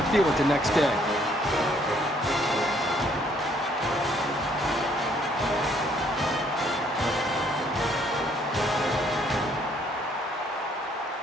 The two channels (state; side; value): normal; both; correlation 0.65